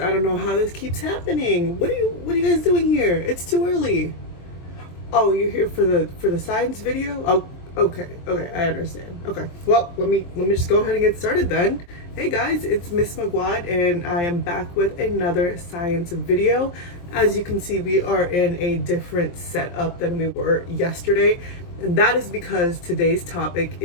I don't know how this keeps happening. What are you guys doing here? It's too early. Oh, you're here for the science video? Oh, okay, I understand. Okay, well, let me just go ahead and get started then. Hey guys, it's Miss Magwad, and I am back with another science video. As you can see, we are in a different setup than we were yesterday, and that is because today's topic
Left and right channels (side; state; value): right; late; 23 ms